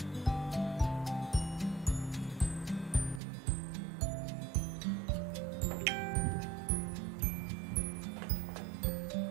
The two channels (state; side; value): drops out; left; at 3.2 s